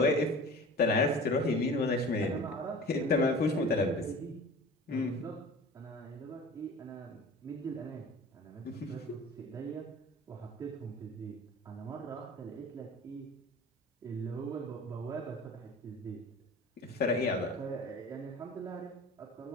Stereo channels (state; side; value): normal; both; correlation 0.39